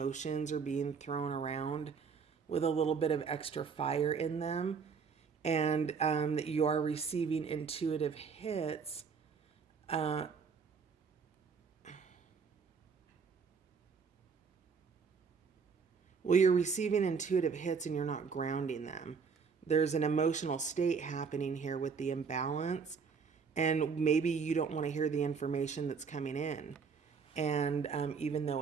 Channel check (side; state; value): left; quieter; 5.7 dB